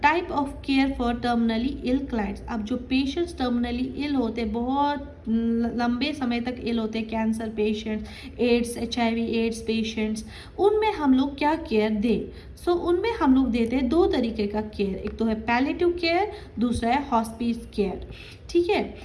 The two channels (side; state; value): both; identical; correlation 1.00